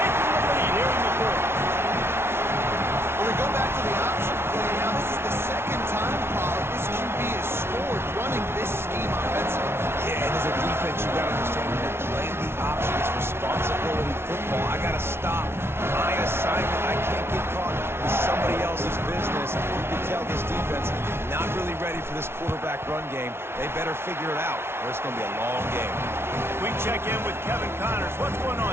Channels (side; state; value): left; late; 0.12 ms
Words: the lead here in the fourth. figure it out, or it's going to be a long game. We check in with Kevin Connors. What's going on,